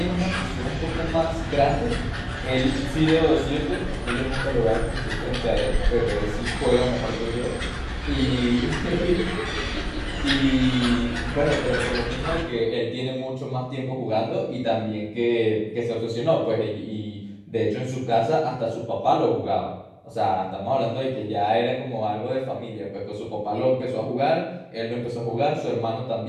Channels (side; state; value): both; identical; correlation 1.00